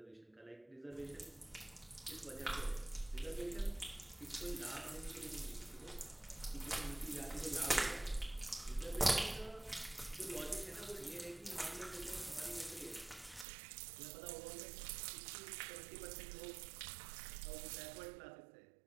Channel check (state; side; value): drops out; left; at 13.5 s